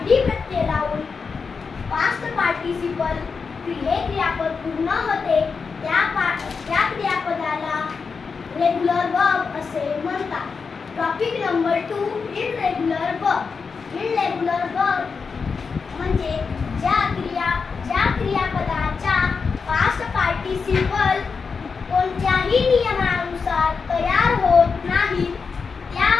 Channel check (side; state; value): right; quieter; 5.2 dB